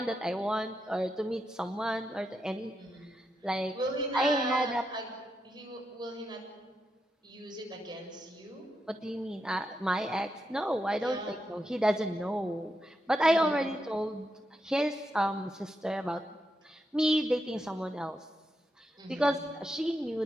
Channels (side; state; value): both; normal; correlation 0.85